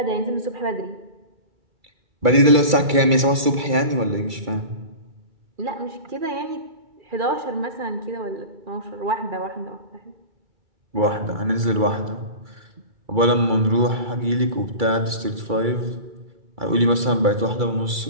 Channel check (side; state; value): left; late; 2.3 ms